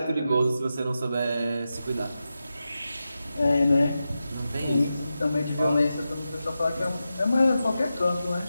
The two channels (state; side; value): inverted; both; correlation -0.91